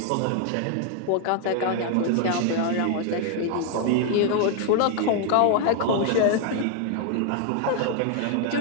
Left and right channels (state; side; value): different; both; correlation 0.00